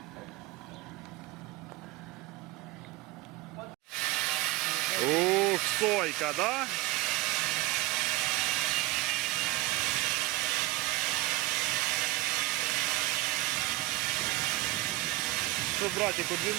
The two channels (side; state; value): left; quieter; 18.8 dB